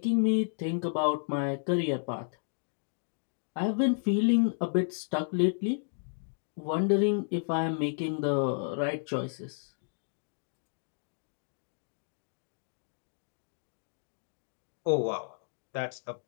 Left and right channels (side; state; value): right; silent; digital silence